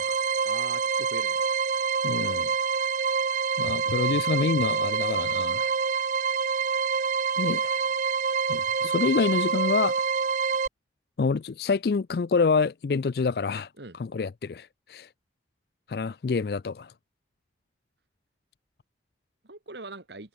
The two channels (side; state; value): both; normal; correlation -0.11